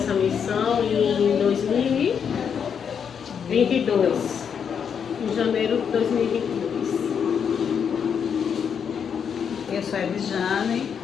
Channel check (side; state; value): right; quieter; 7.3 dB